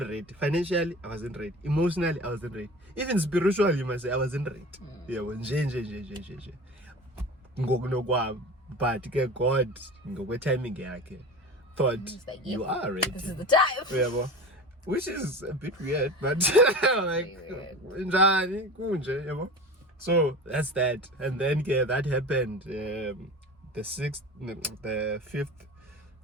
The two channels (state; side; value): normal; both; correlation 0.34